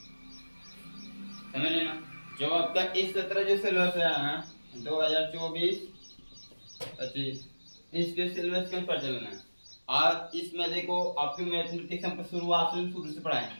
समझ लेना। जो आपका इस सत्र जो सिलेबस है ना, 2024-25, इसके सिलेबस के ऊपर चलना है। और इसमें देखो आपकी मैथमेटिक्स हम शुरू से पढ़ाए,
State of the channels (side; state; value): both; inverted; correlation -1.00